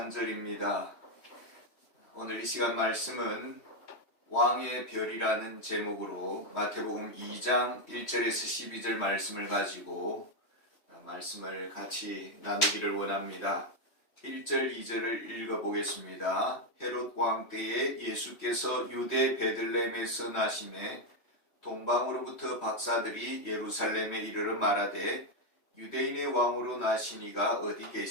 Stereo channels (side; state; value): right; late; 3.1 ms